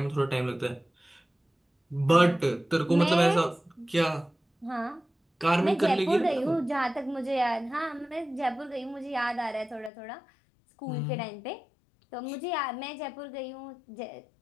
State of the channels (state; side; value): drops out; right; at 9.9 s